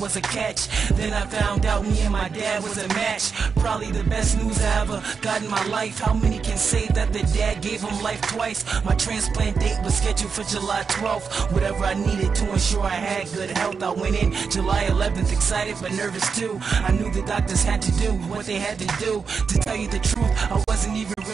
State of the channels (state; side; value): quieter; left; 5.6 dB